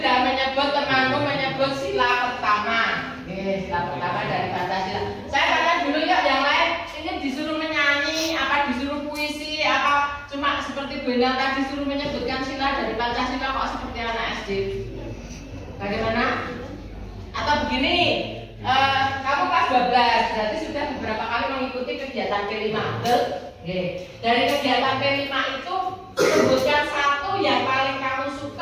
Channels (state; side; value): identical; both; correlation 1.00